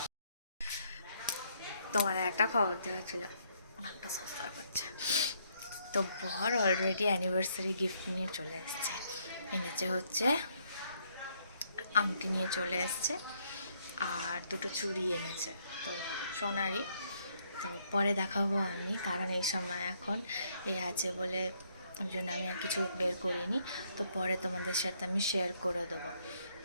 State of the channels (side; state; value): both; inverted; correlation -0.71